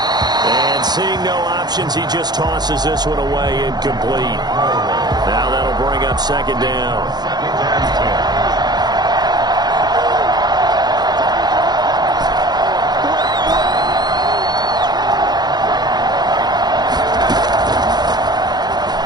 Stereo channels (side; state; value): left; late; 0.20 ms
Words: And seeing no options, he just tosses this one away incomplete. Now that'll bring up 2nd down.